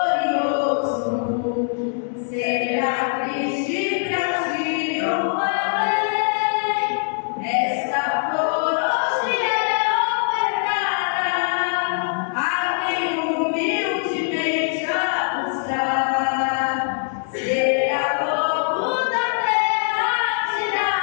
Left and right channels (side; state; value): right; silent; 57 dB below the other